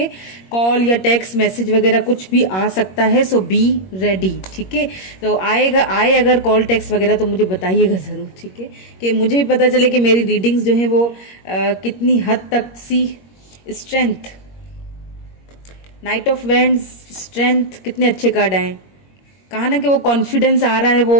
कॉल या टेक्स्ट मैसेज वगैरह कुछ भी आ सकता है। सो बी रेडी। ठीक है, तो आए अगर कॉल टेक्स्ट वगैरह तो मुझे बताइएगा ज़रूर। ठीक है, कि मुझे भी पता चले कि मेरी रीडिंग्स जो है वो कितनी हद तक सी strength, knight of wands, strength, कितने अच्छे कार्ड आए। कहा ना कि वो कॉन्फिडेंस आ रहा है,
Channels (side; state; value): right; late; 21 ms